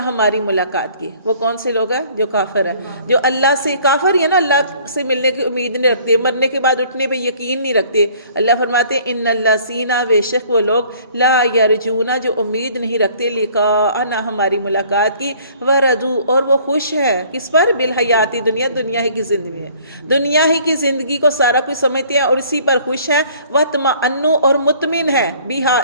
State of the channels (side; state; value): both; inverted; correlation -0.55